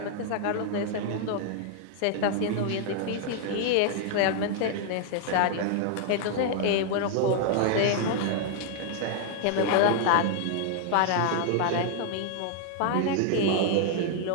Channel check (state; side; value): different; both; correlation 0.00